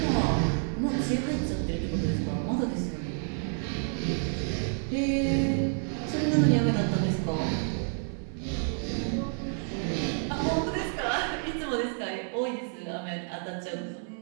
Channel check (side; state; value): left; silent; 58 dB below the other